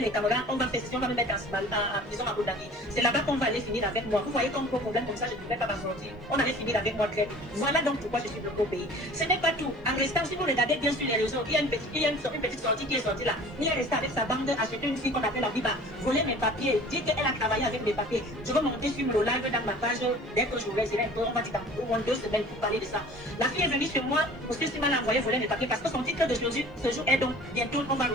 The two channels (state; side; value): normal; both; correlation 0.45